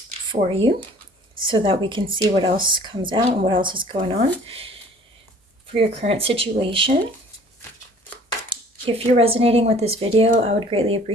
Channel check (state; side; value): normal; both; correlation 0.51